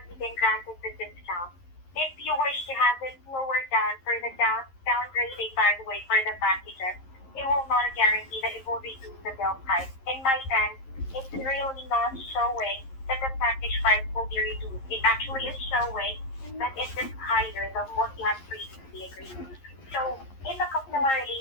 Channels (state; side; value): late; right; 11 ms